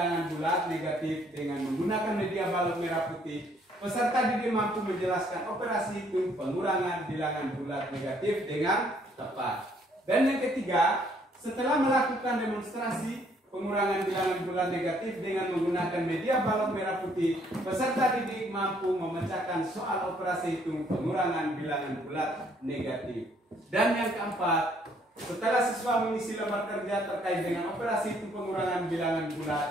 bulat negatif dengan menggunakan media balok merah putih, peserta didik mampu menjelaskan operasi hitung pengurangan bilangan bulat negatif dengan tepat. Dan yang ketiga, setelah melakukan demonstrasi pengurangan bilangan bulat negatif dengan menggunakan media balok merah putih, peserta didik mampu memecahkan soal operasi hitung pengurangan bilangan bulat negatif. Dan yang keempat, setelah siswa mengisi lembar kerja terkait dengan operasi hitung pengurangan bilangan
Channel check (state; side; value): normal; both; correlation 0.65